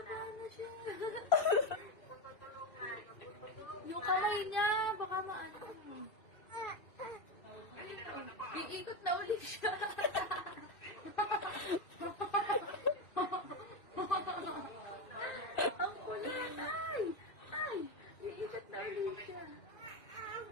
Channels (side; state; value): right; late; 2.5 ms